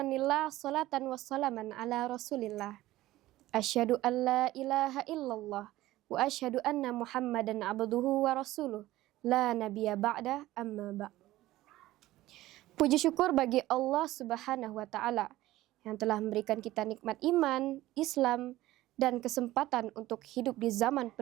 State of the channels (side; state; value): left; quieter; 16.3 dB